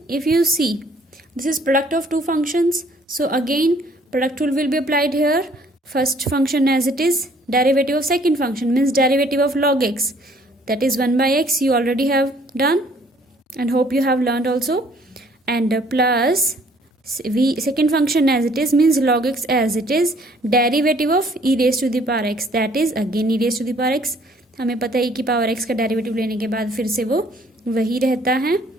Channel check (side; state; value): both; normal; correlation 0.60